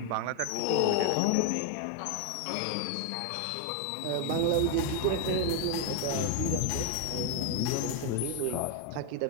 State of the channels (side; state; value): both; different; correlation 0.00